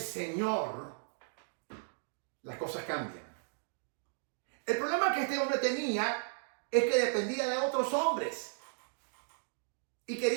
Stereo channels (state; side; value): silent; left; digital silence